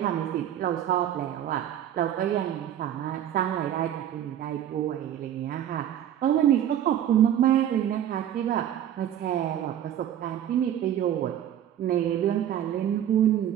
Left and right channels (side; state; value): left; quieter; 10.7 dB